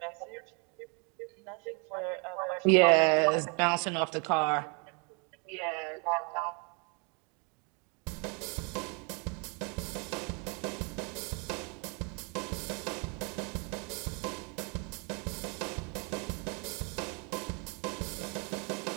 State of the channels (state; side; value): quieter; left; 33.7 dB